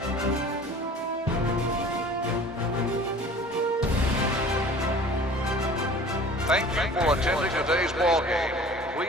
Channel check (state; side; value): normal; both; correlation 0.45